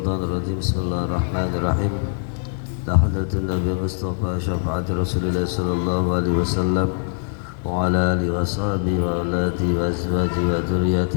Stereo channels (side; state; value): right; silent; digital silence